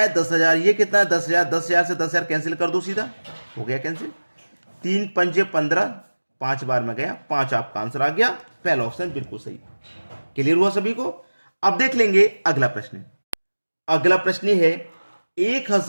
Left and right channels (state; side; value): inverted; both; correlation -1.00